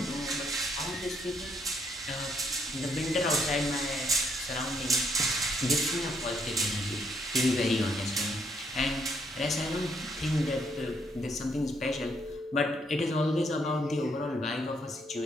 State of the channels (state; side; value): normal; both; correlation 0.71